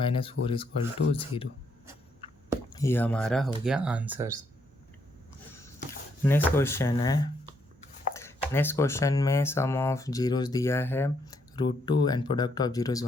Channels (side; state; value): both; normal; correlation 0.74